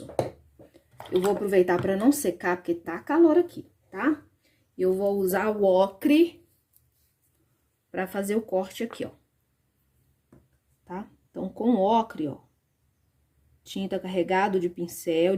eu vou aproveitar pra não secar, porque tá calor aqui, tá? Eu vou usar o ocre pra fazer o corte aqui, ó. Tá? Então, com ocre, ó, tinta carregado de pincel,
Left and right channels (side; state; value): both; identical; correlation 1.00